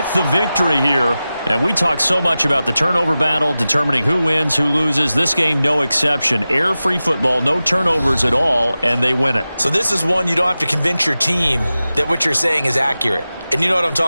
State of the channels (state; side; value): inverted; both; correlation -0.95